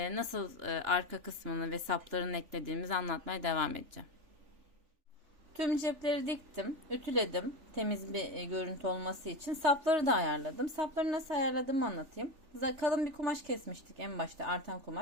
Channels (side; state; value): left; late; 3.4 ms